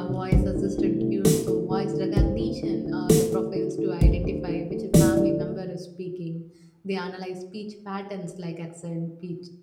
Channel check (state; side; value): identical; both; correlation 1.00